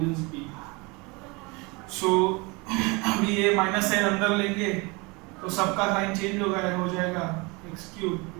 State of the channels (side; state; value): left; quieter; 27.1 dB